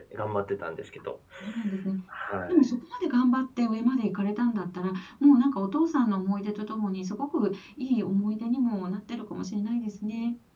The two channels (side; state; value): both; identical; correlation 1.00